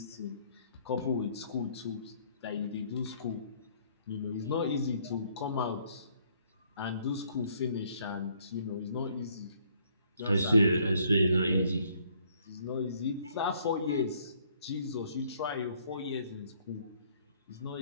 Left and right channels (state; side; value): inverted; both; correlation -0.64